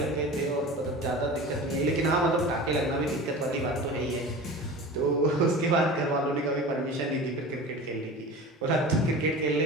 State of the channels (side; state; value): both; normal; correlation 0.35